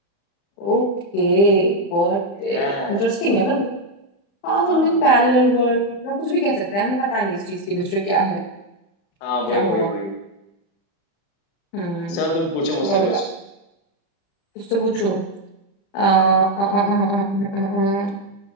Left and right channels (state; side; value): late; right; 35 ms